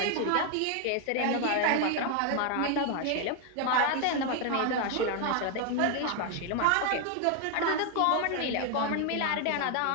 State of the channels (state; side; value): different; both; correlation 0.01